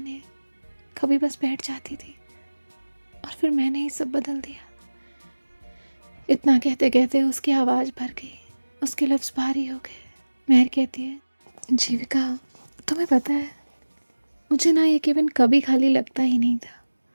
कभी बस बैठ जाती थी और फिर मैंने ही सब बदल दिया। इतना कहते कहते उसकी आवाज़ भर गई, उसके लफ्ज़ भारी हो गए। मेहर कहती है जीविका तुम्हें पता है मुझे ना ये केबिन कभी खाली लगता ही नहीं था।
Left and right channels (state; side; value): inverted; both; correlation -1.00